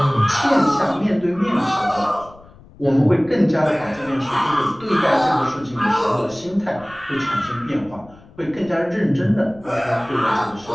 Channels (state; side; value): noise; left; rumble, 23 dB below the sound